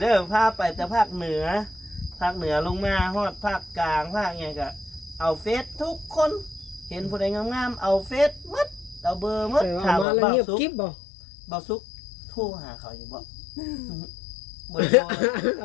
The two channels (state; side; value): drops out; right; at 10.1 s